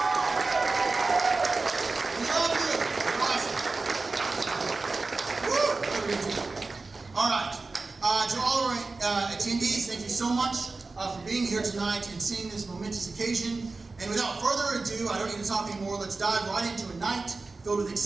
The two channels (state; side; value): quieter; left; 3.7 dB